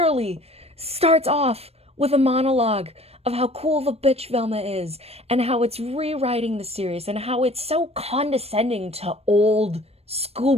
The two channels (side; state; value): left; late; 0.29 ms